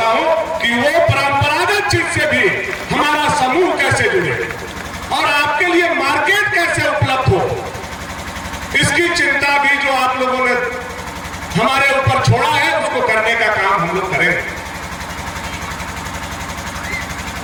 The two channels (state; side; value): identical; both; correlation 1.00